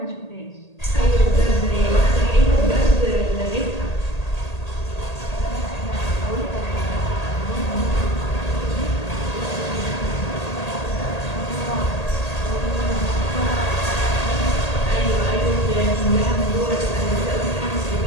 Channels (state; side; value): late; right; 1.8 ms